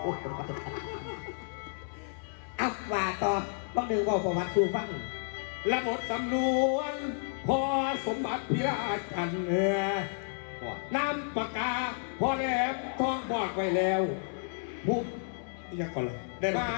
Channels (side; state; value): right; silent; 57 dB below the other